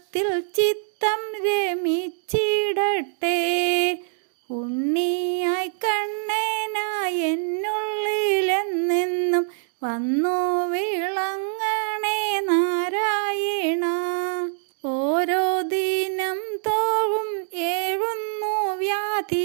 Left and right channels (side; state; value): left; silent; digital silence